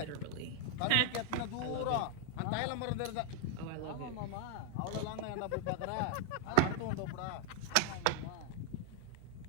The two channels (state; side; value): different; both; correlation 0.00